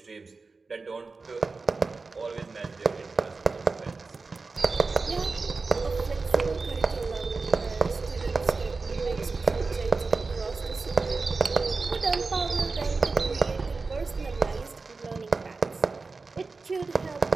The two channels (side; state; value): left; quieter; 4.1 dB